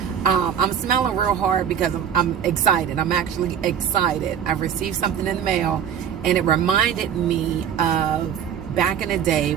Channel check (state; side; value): quieter; left; 8.6 dB